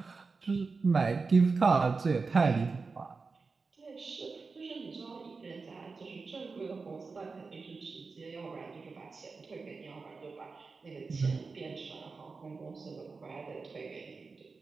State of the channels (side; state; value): left; quieter; 4.4 dB